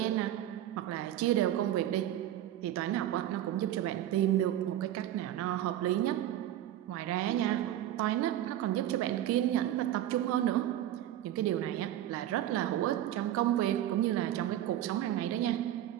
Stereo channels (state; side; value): quieter; left; 12.5 dB